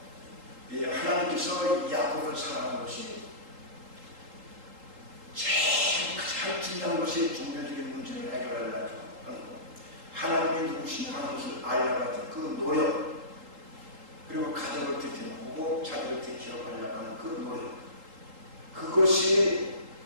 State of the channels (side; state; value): left; late; 3.8 ms